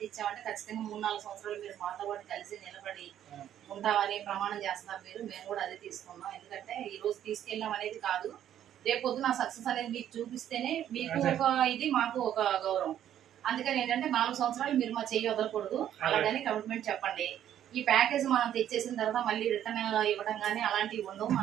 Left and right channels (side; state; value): left; quieter; 10.8 dB